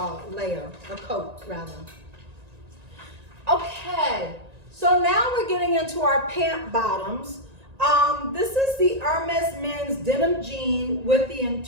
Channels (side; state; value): left; late; 1.9 ms